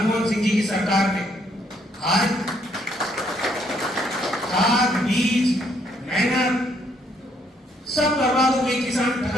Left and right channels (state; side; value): normal; both; correlation 0.70